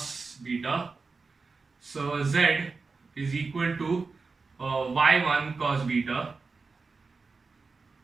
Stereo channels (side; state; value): left; quieter; 4.3 dB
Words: beta. So z is equal to y1 cos beta